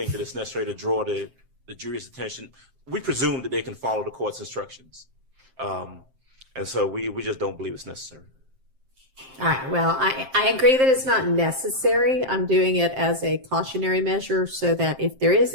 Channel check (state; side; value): late; left; 7.6 ms